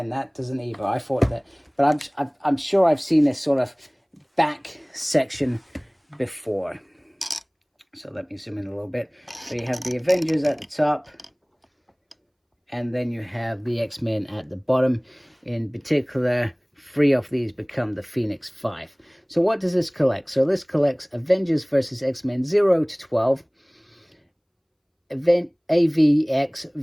that doesn't either. I thought that, but I'm sure I've seen this sort of back section before. So let me zoom in a little bit. So you have the Avengers at the top, and then you have the X-Men at the bottom. In particular, 3 of these become the Phoenix Five. So what does this collect? So this collects Avengers versus X-Men 0 to 12, AVX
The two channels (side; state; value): both; identical; correlation 1.00